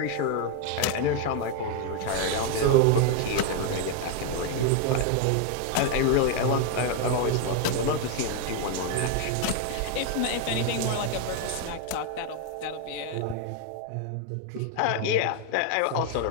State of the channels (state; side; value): different; both; correlation 0.01